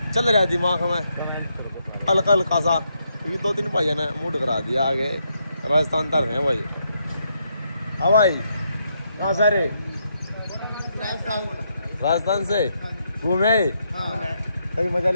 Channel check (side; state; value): both; inverted; correlation -0.78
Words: चल रहा है दिमाग में हल्का हल्का सा, क्योंकि 2-3 भाई ने मूड करा दिया आगे राजस्थान तर हैं भाई। हाँ भाई कहाँ से रे? राजस्थान से घूमे आए, सही मजा